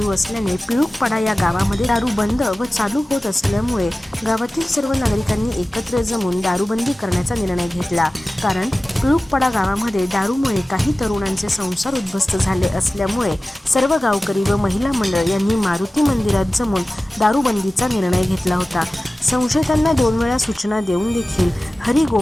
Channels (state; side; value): normal; both; correlation 0.96